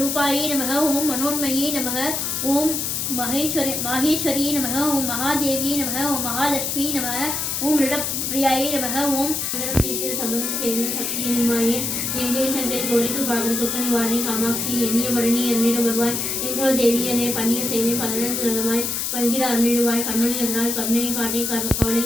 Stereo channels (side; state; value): left; noise; hiss, 1 dB below the sound